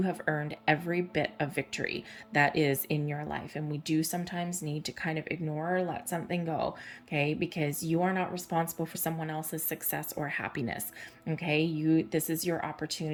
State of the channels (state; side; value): identical; both; correlation 1.00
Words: have earned every bit of victory that is in your life. And we do sometimes need to kind of ignore or let something go, okay, because you are not responsible for someone else's success or happiness. Okay, this is your